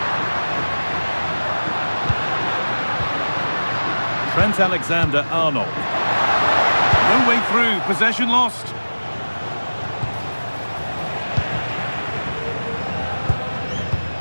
Trent Alexander-Arnold. No way through, possession lost.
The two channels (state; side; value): inverted; both; correlation -1.00